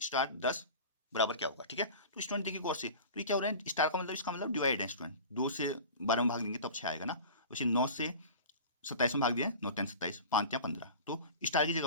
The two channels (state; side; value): inverted; both; correlation -0.36